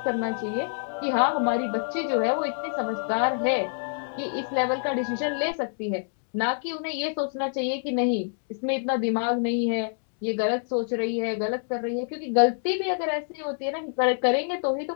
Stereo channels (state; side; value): silent; right; digital silence